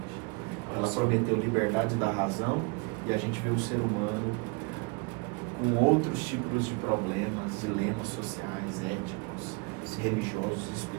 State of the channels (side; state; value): left; quieter; 29.0 dB